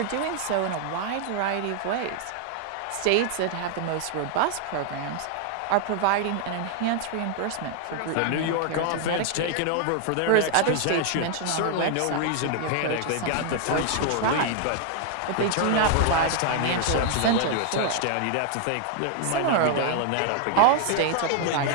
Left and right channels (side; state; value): both; different; correlation 0.00